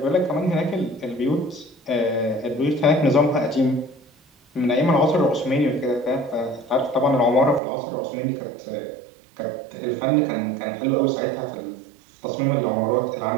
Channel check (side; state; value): left; drops out; at 7.6 s